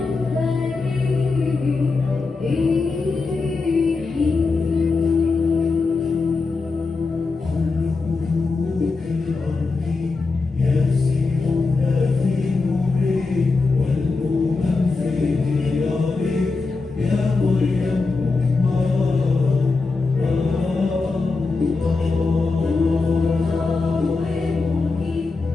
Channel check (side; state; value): right; quieter; 4.0 dB